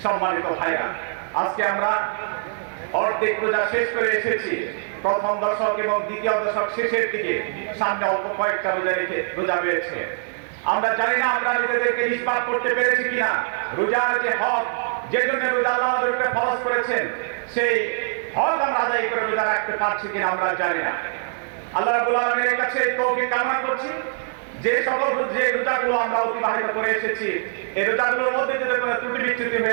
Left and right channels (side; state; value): left; silent; digital silence